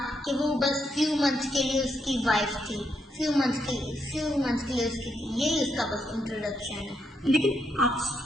کہ وہ بس فیو منتھس کے لیے اس کی وائف تھی، فیو منتھس کے لیے اس کی تھی، یہی اس کا بس انٹروڈکشن ہے. لیکن آپ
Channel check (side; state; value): both; normal; correlation 0.79